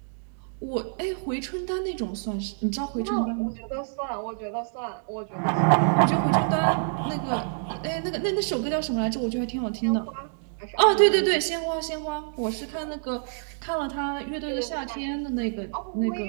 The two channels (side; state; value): left; silent; digital silence